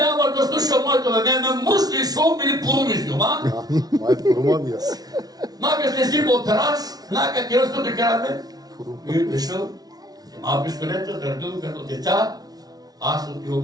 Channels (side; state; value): left; late; 0.19 ms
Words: да слуша моето бебе, ме мусли, шум или порумисли, ма? Май порумавия си. Нака сте си по терас, нака киръсто да караме. И дошъл, взема пистолета, дърдил като: деца, аз